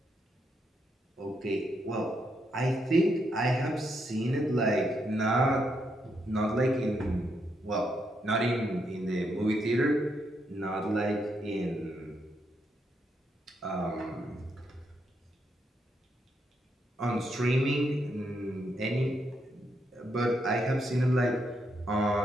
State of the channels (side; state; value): both; normal; correlation 0.79